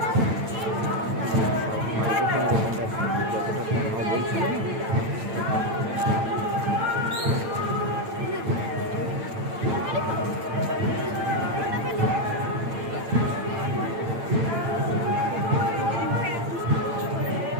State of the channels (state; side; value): late; left; 8.9 ms